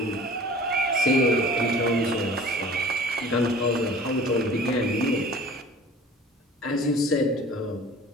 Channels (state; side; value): normal; both; correlation 0.44